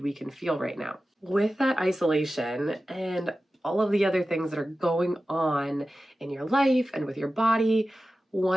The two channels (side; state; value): both; normal; correlation 0.94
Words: we can feel right now. With that isolation and all of the other things that are going on in your life and with your body,